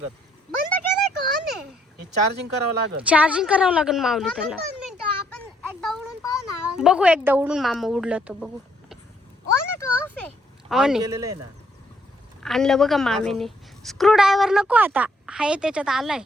बंद केलंय का on आहे? हे चार्जिंग करावं लागेल. चार्जिंग करावं लागेल माऊली त्याला. 2 मिनिटं आपण एकदा उडून पाहू ना. बघू एकदा उडून मामा उडलं तर बघू. ऑन आहे का ऑफ आहे? ऑन आहे. केलेलं आहे ना. आणलं बघा मामीने. स्क्रू ड्रायव्हर नको आता. हाय त्याच्यात आलाय.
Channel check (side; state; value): both; normal; correlation 0.70